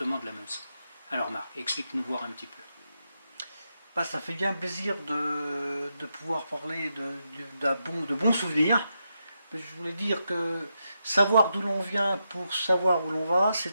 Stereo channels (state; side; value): inverted; both; correlation -0.85